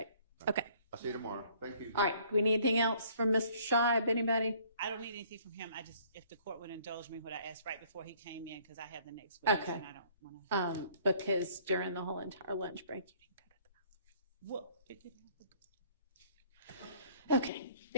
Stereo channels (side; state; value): both; inverted; correlation -0.59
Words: Okay. I'll see you tomorrow. Thank you. All right. Do we need anything else from Mr. Scheib? Anybody? I don't need anything from him. If the court would indulge me what I asked right before he came in, because I have the next witness Okay. and I don't want to. Because during the whole entire lunch break, you didn't go to the Well, it didn't house. Okay.